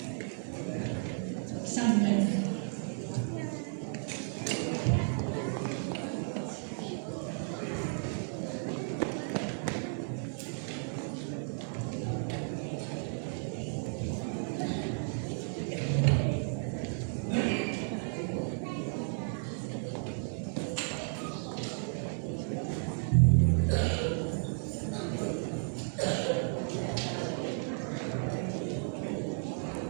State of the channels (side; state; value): left; silent; 55 dB below the other